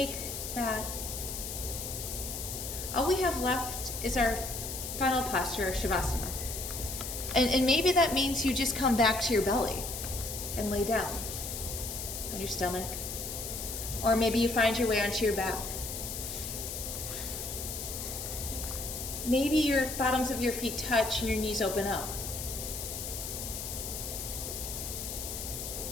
that. All we have left is our final posture, Shavasana. And maybe that means you just come back to your belly and lay down on your stomach. Or maybe you find your way onto your back. Maybe your bottoms of your feet touch and your knees open up.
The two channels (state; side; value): noise; left; hiss, 6 dB below the sound